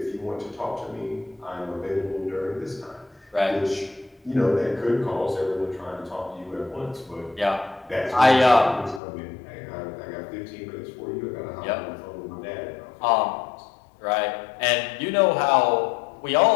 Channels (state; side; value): drops out; right; at 9.0 s